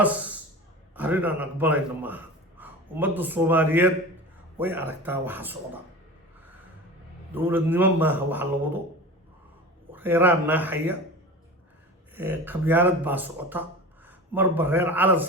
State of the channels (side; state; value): both; normal; correlation 0.33